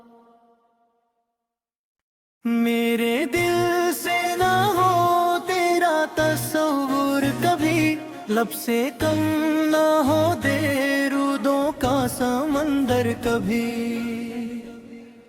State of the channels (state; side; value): identical; both; correlation 1.00